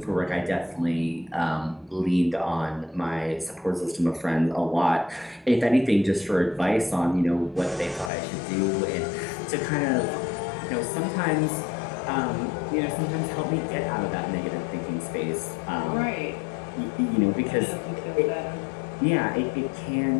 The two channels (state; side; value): drops out; right; at 8.1 s